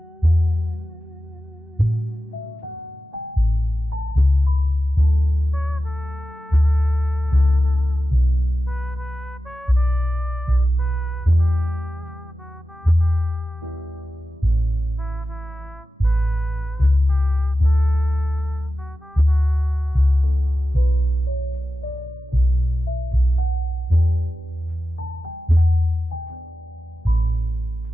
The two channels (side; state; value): both; normal; correlation 0.93